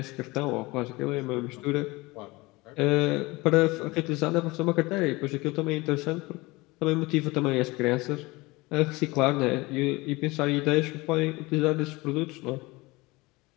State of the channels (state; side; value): quieter; right; 22.6 dB